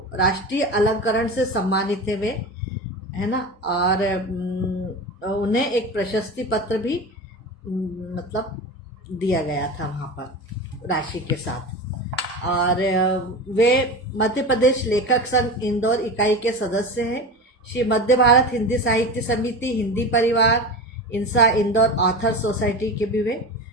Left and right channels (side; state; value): both; normal; correlation 0.27